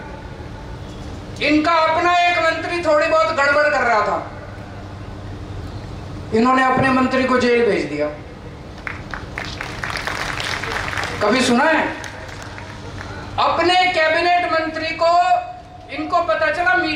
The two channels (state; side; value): identical; both; correlation 1.00